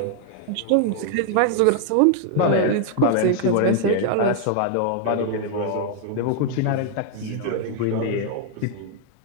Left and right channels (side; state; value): both; different; correlation 0.00